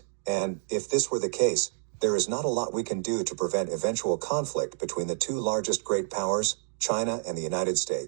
and, if this were the case, there is not a lot we can do to prevent eventual conflict between the two largest great powers, China and the United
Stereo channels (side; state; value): left; silent; digital silence